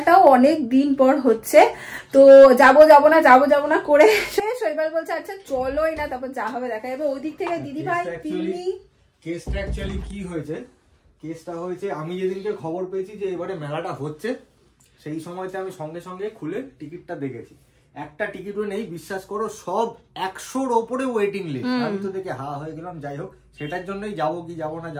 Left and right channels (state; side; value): identical; both; correlation 1.00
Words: অনেক দিন পর হচ্ছে। তো যাবো না করে শৈবাল বলছে আচ্ছা চলোই না, তারপর যা হবে দেখা যাবে। ওইদিক থেকে দিদি ভাই কেসটা অ্যাকচুয়ালি কি হয়েছে, কেসটা হয়েছে আমি যেদিনকে খবর পেয়েছি যে এবারে মেলাটা হচ্ছে, সেই সময়তে আমি সঙ্গে সঙ্গে খুলে টিকিটটা দেখেছি। একটা টিকিটও নেই, বিশ্বাস করো, সব 100-র ওপরে ওয়েটিং লিস্ট। আমি তো দেখে হা হয়ে গেলাম। যাই হোক, সেটার জন্যই যাবো কি যাবো